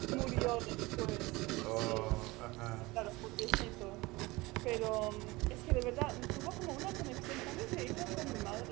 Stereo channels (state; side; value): quieter; left; 21.8 dB